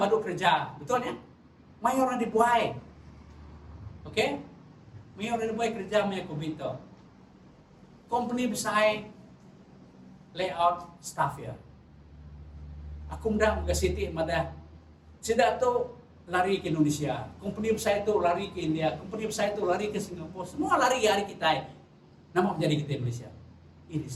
kerja. Betul ya? Maya orang dibuai. Okay? Maya orang dibuai kerja, maya COVID tu. Company besar layout staff ya. Aku mudah ke City madah. Sudah tu lari ke Indonesia. Company besar itu lari ke India. Company besar itu lari ke Singapura. Semua lari hari kita. Nama menjadi kita Indonesia. Ini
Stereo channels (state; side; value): identical; both; correlation 1.00